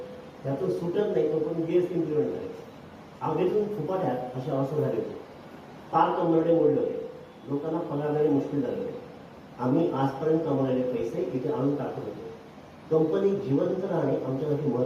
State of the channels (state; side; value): identical; both; correlation 1.00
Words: त्यातून सुटत नाही तोपर्यंत GST इम्प्लिमेंट झाले. आगीतून फुपाट्यात अशी अवस्था झाली होती. फार कंबरडे मोडले होते. लोकांना पगार देणे मुश्किल झाले होते. आम्ही आजपर्यंत कमवलेले पैसे इथे आणून टाकत होतो. कंपनी जिवंत राहणे आमच्यासाठी